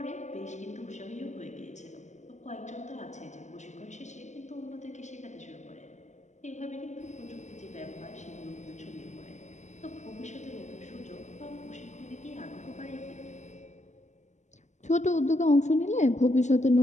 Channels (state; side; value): late; right; 0.34 ms